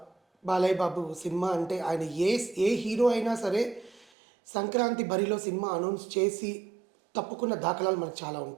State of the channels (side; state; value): left; drops out; at 4.0 s